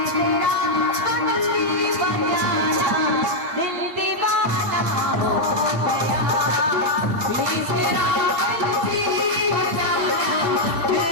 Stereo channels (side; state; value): left; late; 8.3 ms